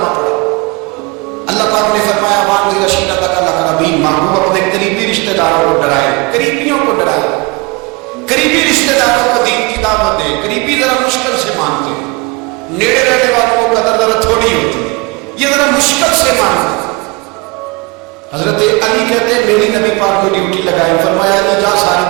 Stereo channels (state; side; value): quieter; left; 26.9 dB